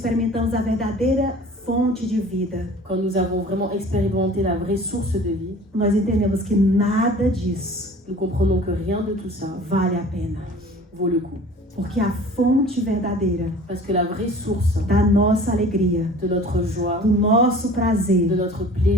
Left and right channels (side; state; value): both; normal; correlation 0.45